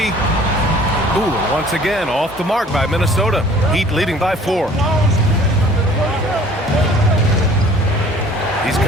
Ooh, once again, off the mark by Minnesota. Heat leading by 4. He's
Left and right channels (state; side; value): normal; both; correlation 0.52